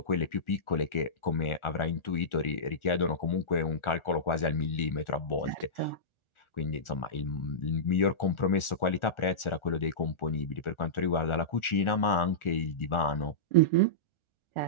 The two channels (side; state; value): right; late; 1.4 ms